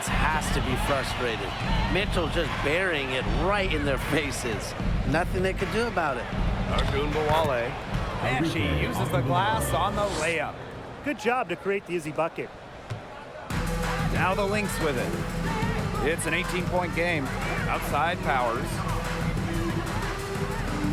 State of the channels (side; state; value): both; identical; correlation 1.00